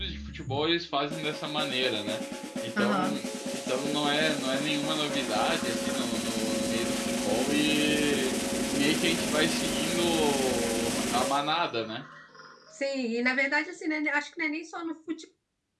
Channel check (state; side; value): identical; both; correlation 1.00